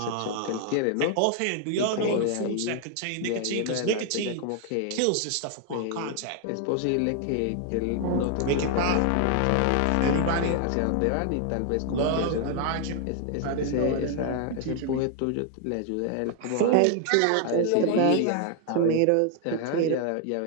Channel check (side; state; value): both; different; correlation 0.00